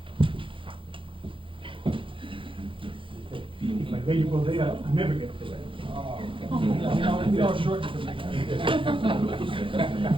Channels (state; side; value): late; left; 0.25 ms